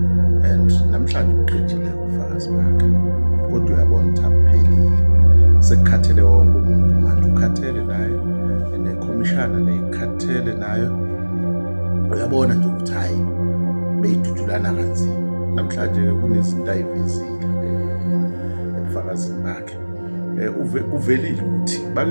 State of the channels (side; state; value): both; inverted; correlation -1.00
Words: and namhlanje uqedile ubufakazi bakhe kodwa uyabona ukuthi akuphelile sekukhathele wonke umuntu manje ukhathele naye nekhomishana nekhathele nayo uyabona nje ukuthi hayi beyidudulana kanzima namhlanje kunezinto ayivezile ebufakazini bakhe uvelile ukuthi bake